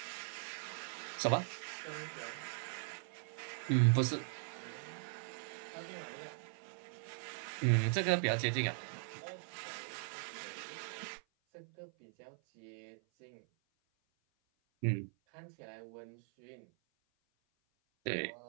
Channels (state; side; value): silent; left; 51 dB below the other